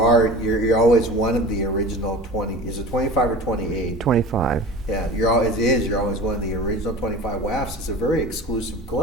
always one of the original 20. Is it 25 or 28? 25. Yeah, you're always one of the original 25 WAFs. It's a very exclusive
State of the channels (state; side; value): normal; both; correlation 0.37